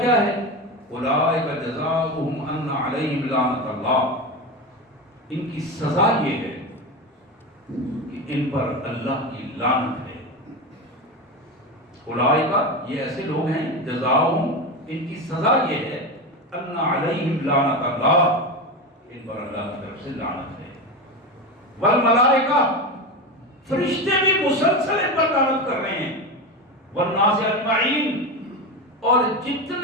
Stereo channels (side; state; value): both; normal; correlation 0.20